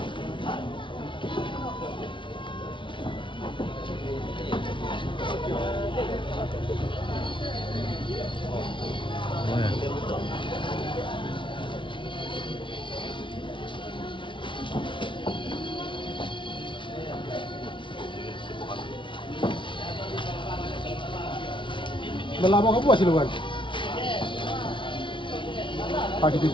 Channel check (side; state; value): right; late; 0.24 ms